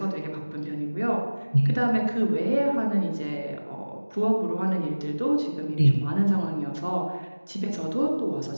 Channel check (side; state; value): both; inverted; correlation -1.00